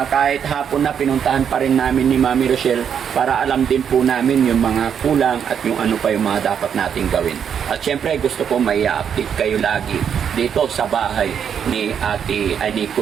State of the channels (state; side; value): quieter; left; 7.9 dB